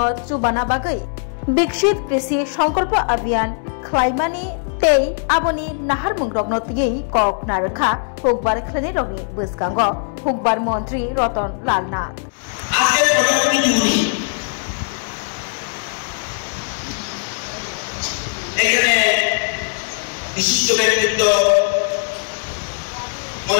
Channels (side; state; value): right; silent; 66 dB below the other